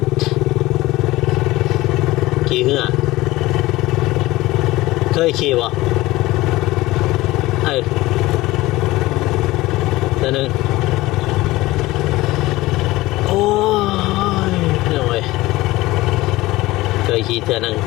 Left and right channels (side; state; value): right; quieter; 18.8 dB